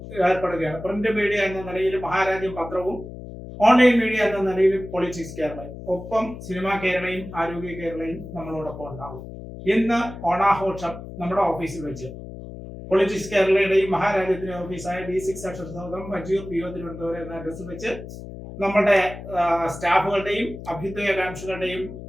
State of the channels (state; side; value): noise; left; hum, 12 dB below the sound